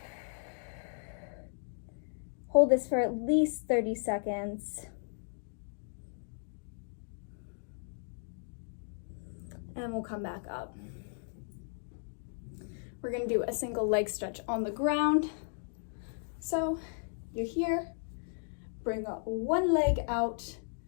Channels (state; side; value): silent; right; digital silence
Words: Hold this for at least 30 seconds. And we'll come back up. We're gonna do a single leg stretch on the ground. So you're here, bring up one leg out